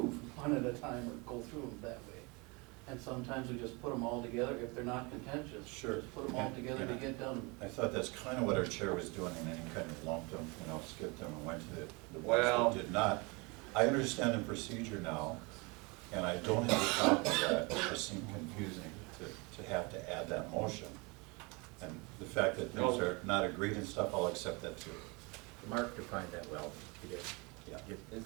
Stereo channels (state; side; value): quieter; left; 28.3 dB